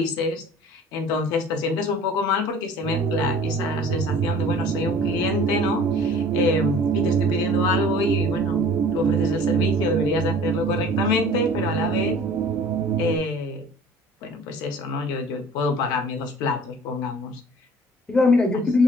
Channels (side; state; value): both; normal; correlation 0.47